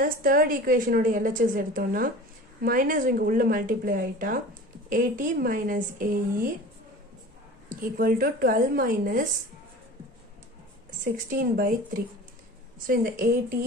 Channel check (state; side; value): normal; both; correlation 0.38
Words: third equation ஓட LHS எடுத்தோம்னா minus இங்க உள்ள multiply ஆயிட்டா AT minus AE equal to 12 minus 16 by 3. So இந்த AT